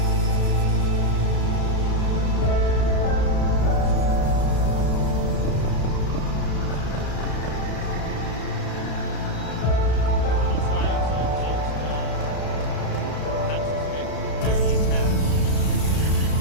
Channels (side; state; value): right; late; 33 ms